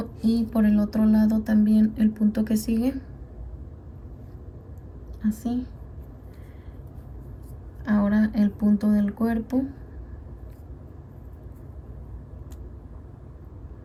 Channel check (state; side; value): identical; both; correlation 1.00